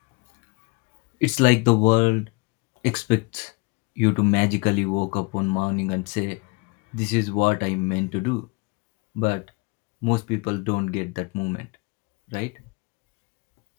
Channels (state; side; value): quieter; right; 28.4 dB